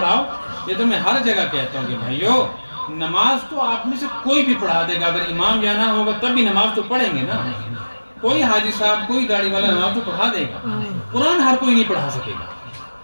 یہ تو میں ہر جگہ کہتا ہوں کہ بھائیو نماز تو آپ میں سے کوئی بھی پڑھا دے گا، اگر امام جانا ہوگا تب بھی نماز تو پڑھیں گے نا، کوئی حاجی صاحب کوئی داڑھی والا نماز تو پڑھا دے گا۔ قرآن ہر کوئی نہیں پڑھا سکے گا،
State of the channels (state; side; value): inverted; both; correlation -1.00